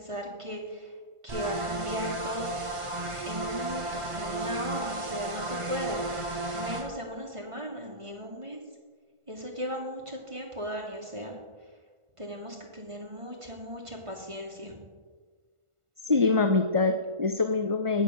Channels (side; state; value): left; late; 1.4 ms